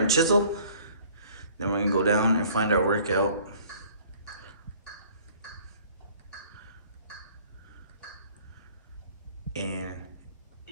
chisel. Then we're gonna go down and find our workout. And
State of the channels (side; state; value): both; inverted; correlation -0.54